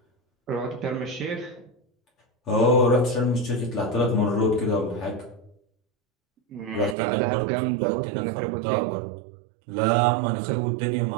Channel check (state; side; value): drops out; left; at 7.0 s